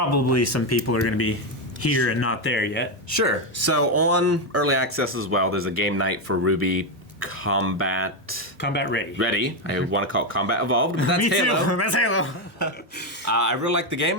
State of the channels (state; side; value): normal; both; correlation 0.07